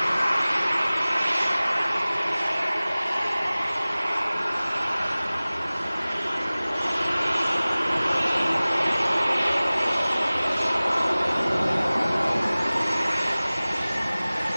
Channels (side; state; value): both; inverted; correlation -0.99